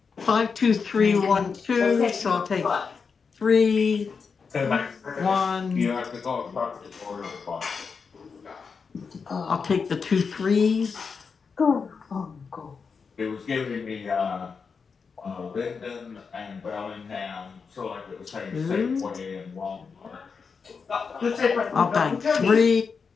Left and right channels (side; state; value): right; quieter; 5.4 dB